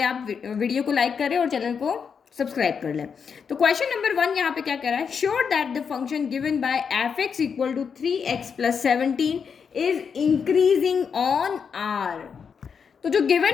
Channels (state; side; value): quieter; right; 6.4 dB